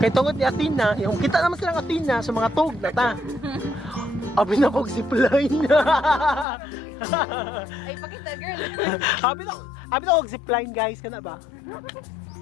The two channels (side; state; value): right; drops out; at 6.5 s